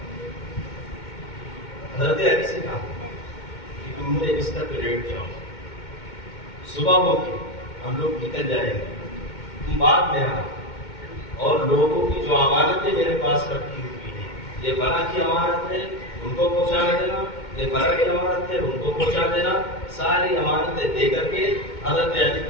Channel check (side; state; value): right; late; 2.2 ms